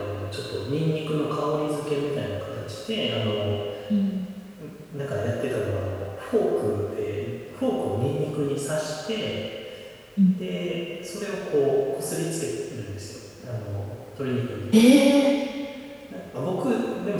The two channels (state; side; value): identical; both; correlation 1.00